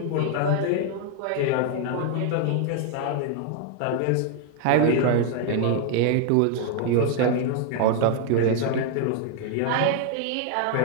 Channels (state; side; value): different; both; correlation 0.00